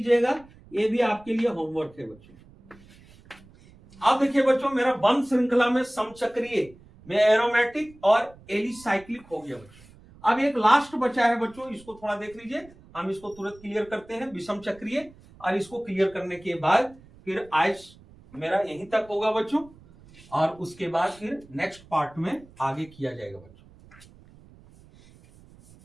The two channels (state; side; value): noise; right; rumble, 24 dB below the sound